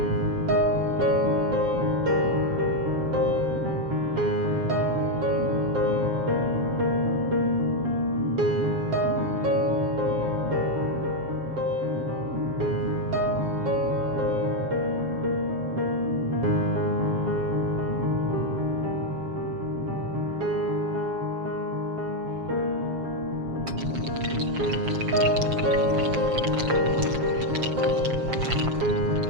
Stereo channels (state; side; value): late; left; 7.4 ms